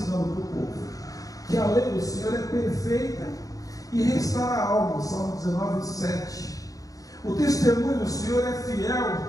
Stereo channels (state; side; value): late; right; 0.17 ms